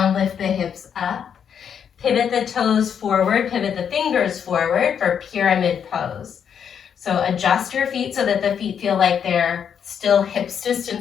lift the hips up. Pivot the toes forward, pivot the fingers forward for pyramid pose. So adjust your feet so that the feet feel like they're still hips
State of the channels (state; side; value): quieter; right; 7.9 dB